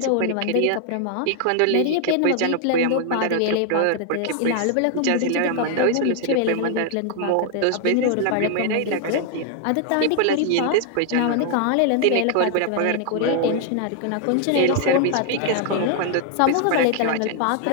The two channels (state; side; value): different; both; correlation 0.00